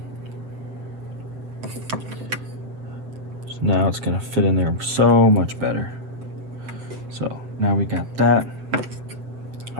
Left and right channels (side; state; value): left; late; 7.7 ms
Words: So now it's gonna fit in there so much better. So now we got that.